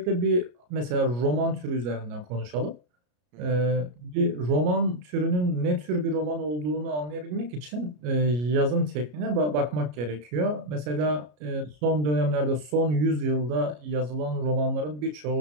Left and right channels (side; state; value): left; late; 33 ms